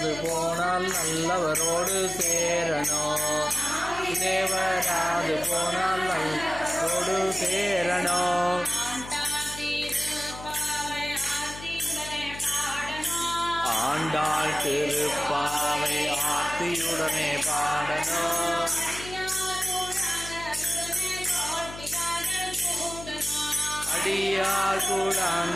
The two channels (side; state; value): left; noise; hum, 13 dB below the sound